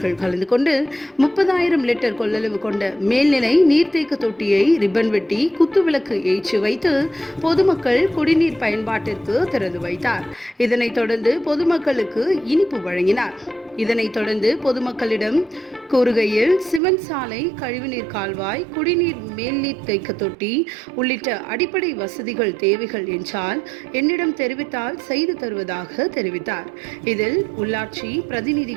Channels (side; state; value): left; drops out; at 16.8 s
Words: கலந்து கொண்டு 30,000 லிட்டர் கொள்ளளவு கொண்ட மேல்நிலை நீர்த்தேக்க தொட்டியை ரிப்பன் வெட்டி குத்துவிளக்கு ஏற்றி வைத்து பொதுமக்கள் குடிநீர் பயன்பாட்டிற்கு திறந்து வைத்தார். இதனைத் தொடர்ந்து பொதுமக்களுக்கு இனிப்பு வழங்கினார். இதனைத் தொடர்ந்து பொதுமக்களிடம் கூறுகையில் சிமெண்ட் சாலை, கழிவுநீர் கால்வாய், குடிநீர் மேல்நீர் தேக்க தொட்டி உள்ளிட்ட அடிப்படை வசதிகள் தேவைகள் என்றால் என்னிடம் தெரிவித்தால் செய்து தருவதாக தெரிவித்தார். இதில் உள்ளாட்சி